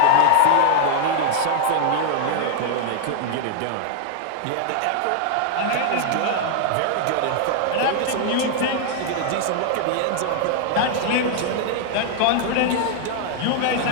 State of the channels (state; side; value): different; both; correlation 0.00